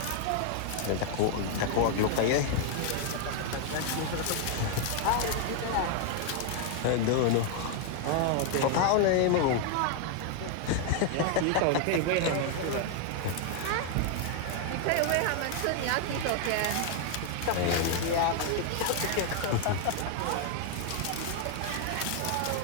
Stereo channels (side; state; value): both; different; correlation 0.00